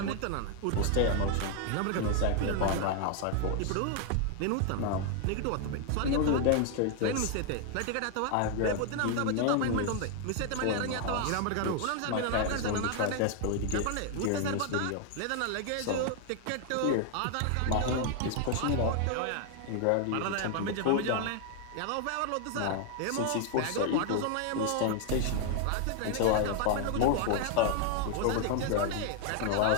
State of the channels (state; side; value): different; both; correlation 0.00